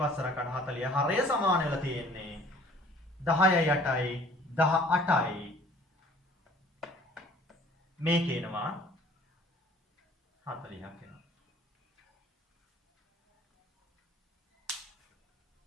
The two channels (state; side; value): normal; both; correlation 0.53